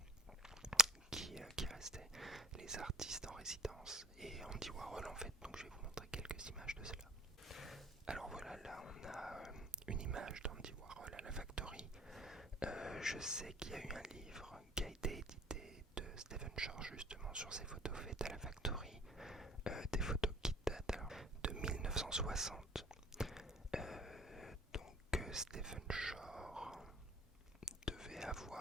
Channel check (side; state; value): both; normal; correlation 0.47